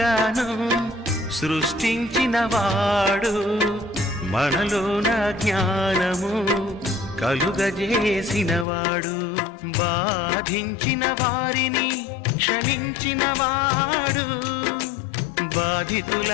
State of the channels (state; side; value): drops out; right; at 8.7 s